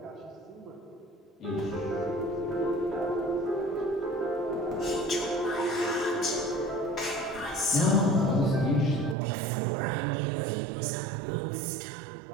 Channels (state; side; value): drops out; left; at 9.2 s